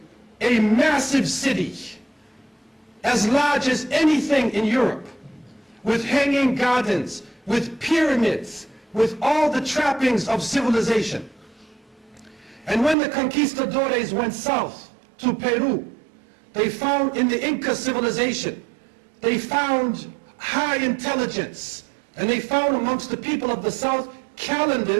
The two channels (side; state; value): left; drops out; at 13.0 s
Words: a massive city as large as anything in Europe, with hanging gardens, with pyramids, with all the trappings of civilization. And when the conquistadores went south to Peru, they found in the Inca civilization, they found high intelligence, and they found amongst the people of the south